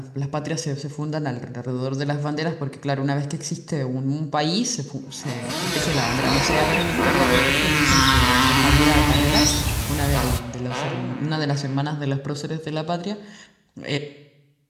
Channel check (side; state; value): both; identical; correlation 1.00